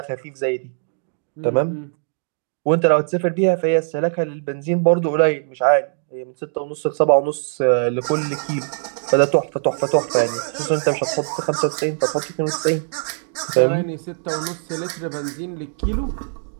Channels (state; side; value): silent; left; digital silence